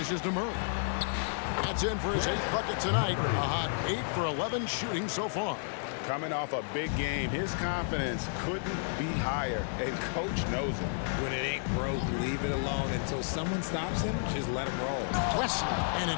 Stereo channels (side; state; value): right; silent; digital silence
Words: to Murray. That's in for his 8th bucket tonight. A hot 8 for 11 shooting so far. Coming off a big game, his confidence couldn't be higher, and Coach knows it. When it ain't broke, leave it alone until someone stops him. Just let him roll. Wesley, and